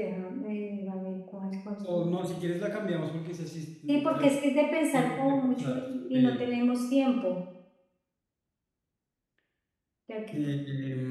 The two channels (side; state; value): both; identical; correlation 1.00